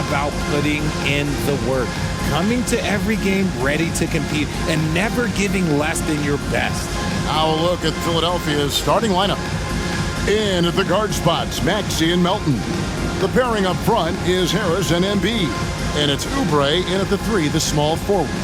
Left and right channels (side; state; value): both; identical; correlation 1.00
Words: putting in the work, coming to every game ready to compete, and never giving less than your best. Now a look at Philadelphia's starting lineup. In at the guard spots, Maxey and Melton. The pairing up front is Harris and Embiid. And it's Oubre in at the 3, the small forward.